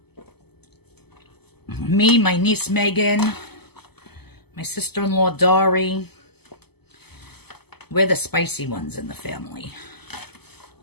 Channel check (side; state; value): right; late; 0.97 ms